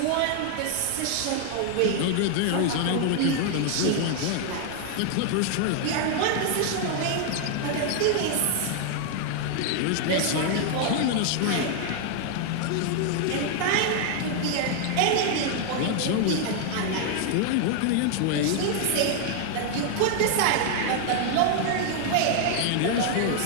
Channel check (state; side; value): different; both; correlation 0.00